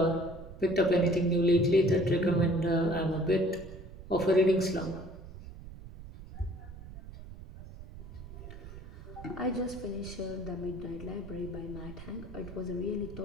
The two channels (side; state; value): right; noise; rumble, 14 dB below the sound